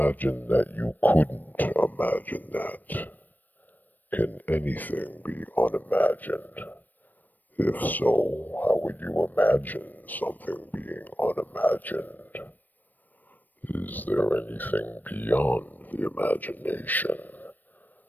that you couldn't imagine that. Can anything be unimagined? If so, how would you imagine something being unimagined? Is there anything beyond the imagination?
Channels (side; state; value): right; late; 0.087 ms